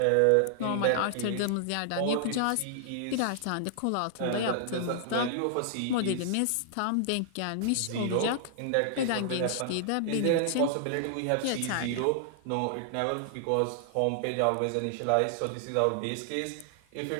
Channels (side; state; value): both; different; correlation -0.01